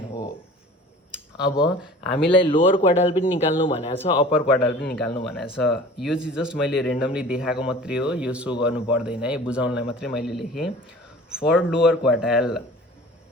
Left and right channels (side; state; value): both; normal; correlation 0.43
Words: हो। अब हामीलाई लोअर क्वार्टाइल पनि निकाल्नु भनेको छ, अप्पर क्वार्टाइल पनि निकाल्नु भनेको छ। यो चाहिँ जस्ट मैले रेन्डमली देखाएको मात्रै हो, यो सो गर्नु पर्दैन है, बुझाउनलाई मात्रै मैले लेखेँ। For lower quartile,